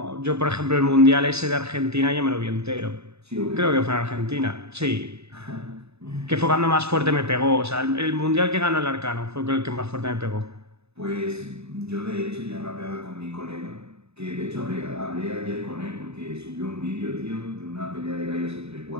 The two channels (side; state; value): left; late; 0.79 ms